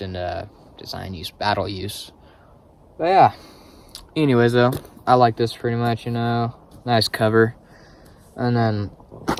and battle use. But yeah, anyways though, I like this pretty much, nice cover. And then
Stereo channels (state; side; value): identical; both; correlation 1.00